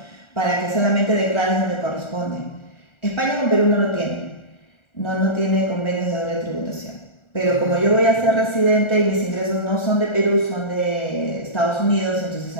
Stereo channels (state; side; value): late; right; 1.4 ms